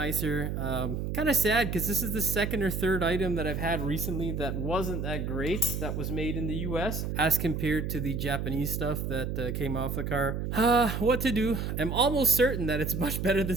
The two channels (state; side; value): noise; right; hum, 3 dB below the sound